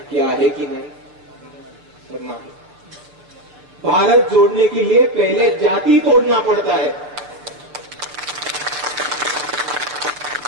आहे की नाही. तर नाही. भारत जोड़ने के लिए पहले जाति तोड़ना पड़ता है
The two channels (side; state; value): left; late; 6.7 ms